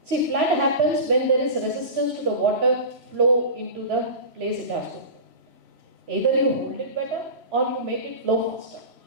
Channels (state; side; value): late; left; 3.0 ms